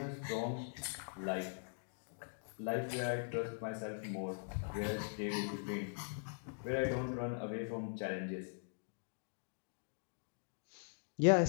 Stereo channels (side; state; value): right; silent; digital silence